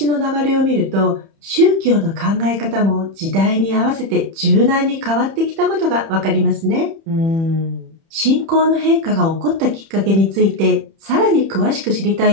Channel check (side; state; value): left; late; 30 ms